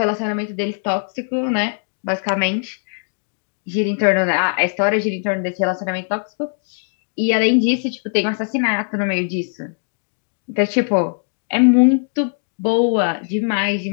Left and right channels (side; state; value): right; silent; digital silence